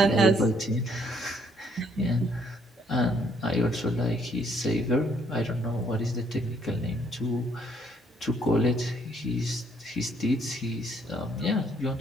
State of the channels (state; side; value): normal; both; correlation 0.68